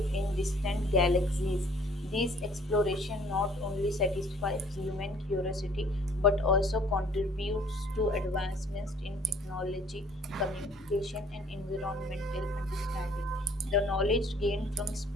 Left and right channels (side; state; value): both; normal; correlation 0.57